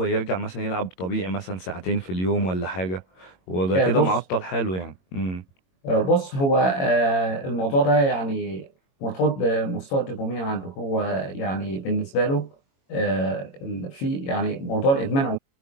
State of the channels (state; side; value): late; right; 22 ms